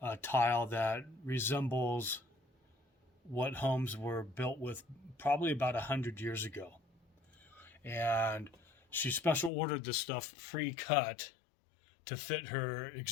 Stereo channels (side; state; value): right; drops out; at 9.5 s